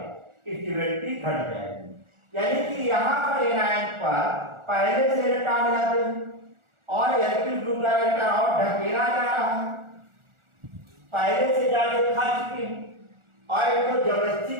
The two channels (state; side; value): late; left; 1.4 ms